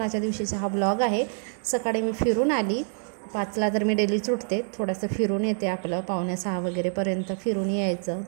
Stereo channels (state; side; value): silent; left; digital silence